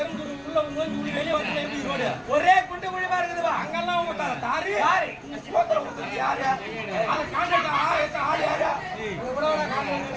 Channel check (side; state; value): both; identical; correlation 1.00